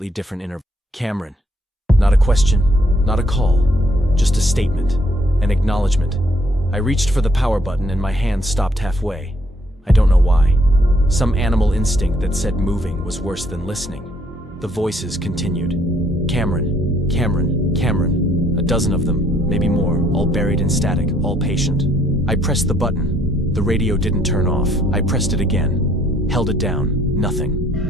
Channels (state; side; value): normal; both; correlation 0.67